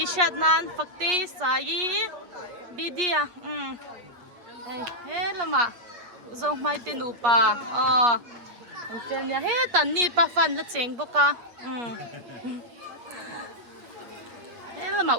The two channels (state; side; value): late; left; 8.4 ms